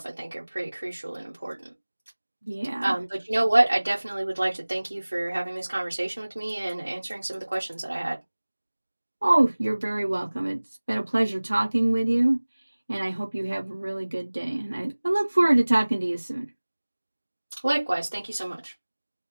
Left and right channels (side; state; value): both; inverted; correlation -1.00